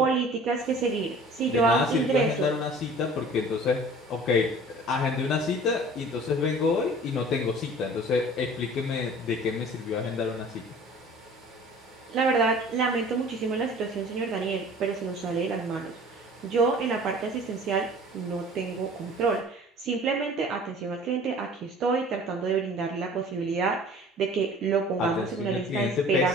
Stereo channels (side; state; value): both; normal; correlation 0.46